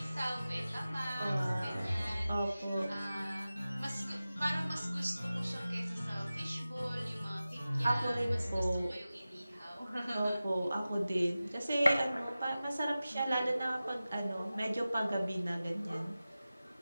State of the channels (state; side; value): inverted; both; correlation -0.96